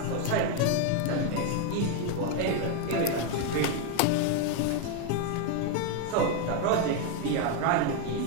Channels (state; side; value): different; both; correlation 0.01